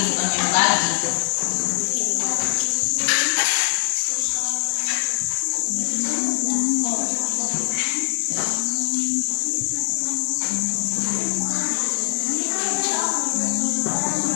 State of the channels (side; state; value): right; silent; 64 dB below the other